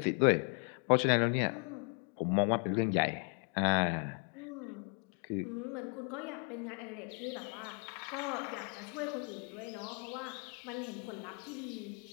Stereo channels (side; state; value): right; quieter; 37.8 dB